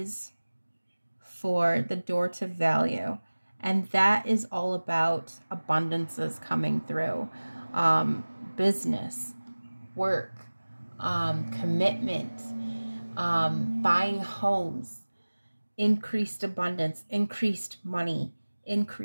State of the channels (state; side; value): inverted; both; correlation -1.00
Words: for the door to value. And that is all about abundances coming through. Business, work, commitment, buying homes, increased abundance, increased money,